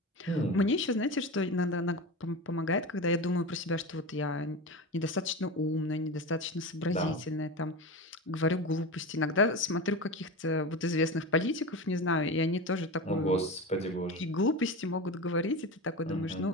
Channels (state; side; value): normal; both; correlation 0.25